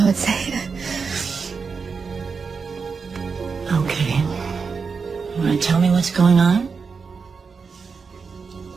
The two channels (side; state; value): left; quieter; 5.3 dB